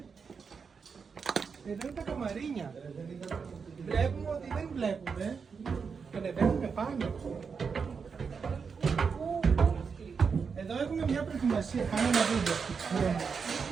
Εδώ είναι τα καμαρίνια. Βλέπουμε ότι δεν βλέπουμε. Ανεβαίνουμε πάνω. Εδώ έχουμε μια προετοιμασία. Πάμε να δείτε.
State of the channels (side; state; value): left; quieter; 5.7 dB